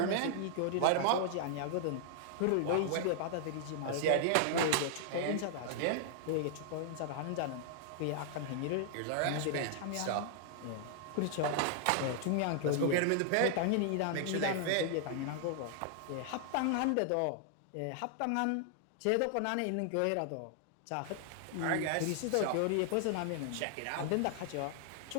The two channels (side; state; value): both; different; correlation 0.00